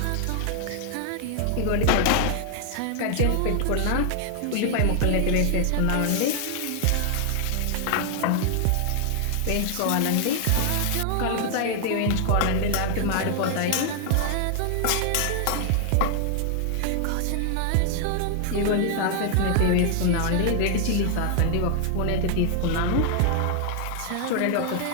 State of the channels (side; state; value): both; different; correlation 0.00